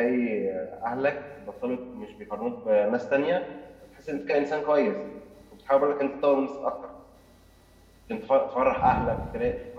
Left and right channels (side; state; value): both; identical; correlation 1.00